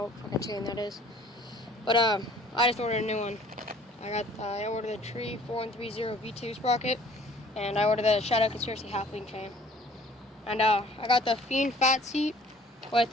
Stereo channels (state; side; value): normal; both; correlation 0.53